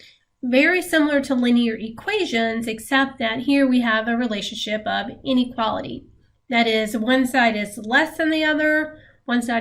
Very similar to linear equations, except that here we have a relationship of inequality. That is, one side is less than the other, one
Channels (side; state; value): both; identical; correlation 1.00